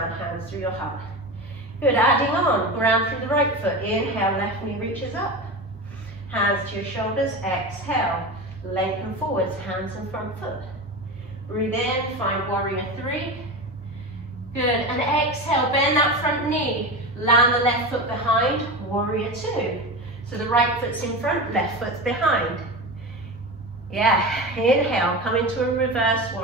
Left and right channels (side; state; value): both; normal; correlation 0.25